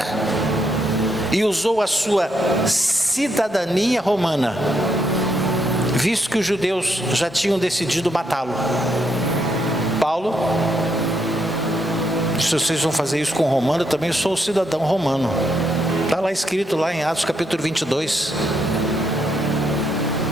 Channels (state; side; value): normal; both; correlation 0.77